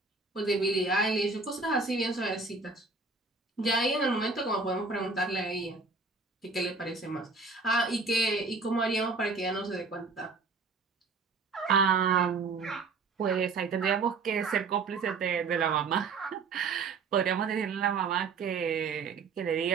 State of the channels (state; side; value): quieter; left; 4.3 dB